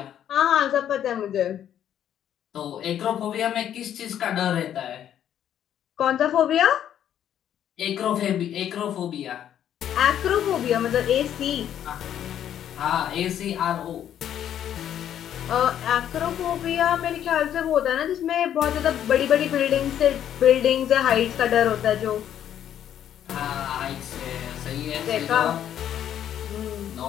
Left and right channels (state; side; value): quieter; right; 10.3 dB